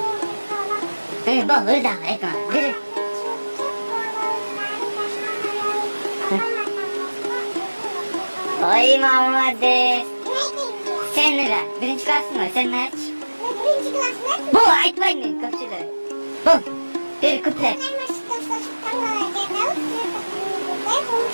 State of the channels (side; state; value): both; inverted; correlation -1.00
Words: Bu, öyle ekran, bir. Oy Muhammed. Sen ne lan? Birinci klasın mı? Sen ne aç? Birinci klasın mı? Bu aytmayın kapşıda. Bu, bir kuplet.